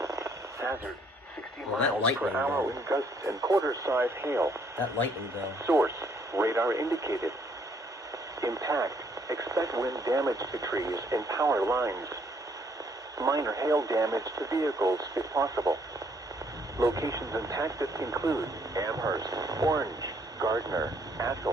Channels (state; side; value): normal; both; correlation 0.67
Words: Hazard, 60 Well, that miles per lightning, hour though. in gusts and quarter-size hail. That lightning, though. Source, radar indicated. Impact, expect wind damage to trees and power lines. Minor hail damage to vehicles if possible. Locations impacted include Amherst, Orange, Gardner,